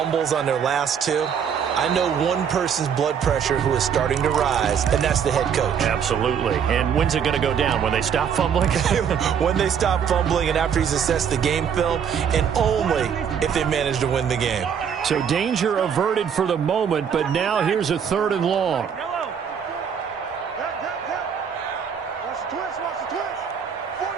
on their last two, I know one person's blood pressure who is starting to rise, and that's the head coach. Absolutely. And when's it going to go down? When they stop fumbling? When they stop fumbling and after he's assessed the game film, and only if they manage to win the game. So danger averted for the moment, but now here's a 3rd and long. Yellow. Watch the twist, watch the twist.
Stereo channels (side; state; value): left; quieter; 7.6 dB